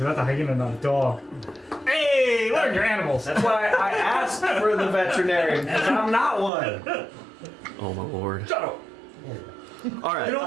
that's a hyena, not a dog. Hey, learn your animals. That's why I asked for the veterinarian, because I'm not one. Oh my lord. Shut up. All right. You know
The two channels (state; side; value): drops out; left; at 6.5 s